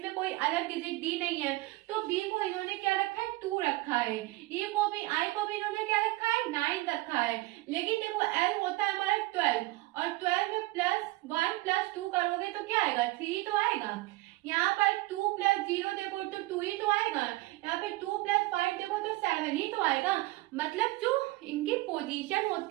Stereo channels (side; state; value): left; quieter; 20.2 dB